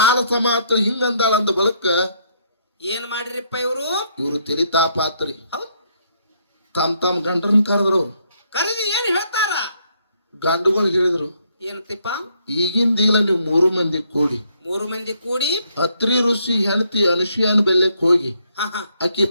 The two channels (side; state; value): both; inverted; correlation -0.72